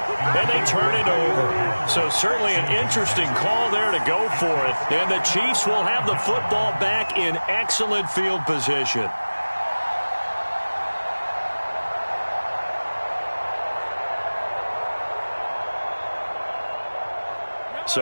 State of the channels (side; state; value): both; inverted; correlation -1.00